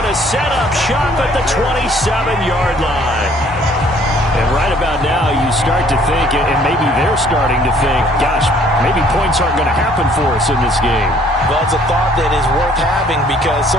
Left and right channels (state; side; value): normal; both; correlation 0.59